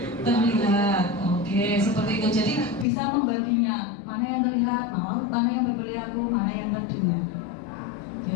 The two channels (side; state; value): right; drops out; at 2.9 s